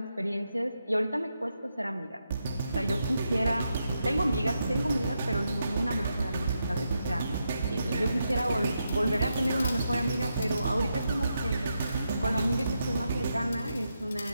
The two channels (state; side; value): inverted; both; correlation -0.84